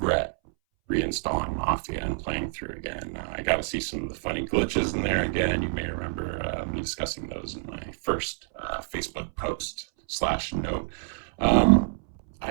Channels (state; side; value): silent; left; 60 dB below the other